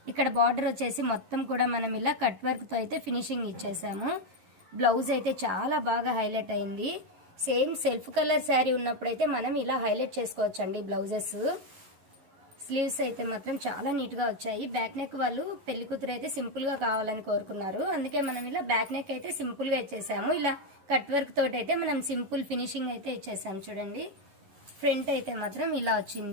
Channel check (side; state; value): left; late; 11 ms